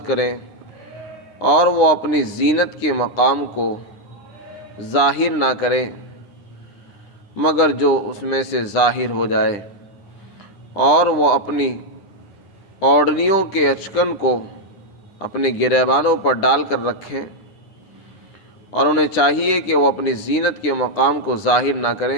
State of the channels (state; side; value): late; right; 10 ms